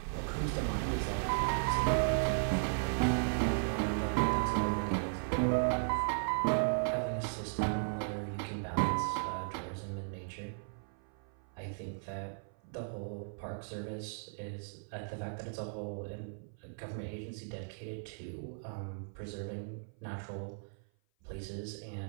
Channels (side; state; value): left; silent; 54 dB below the other